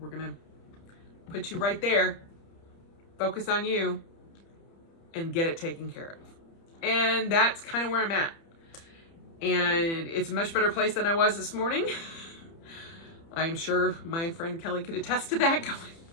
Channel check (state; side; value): late; right; 30 ms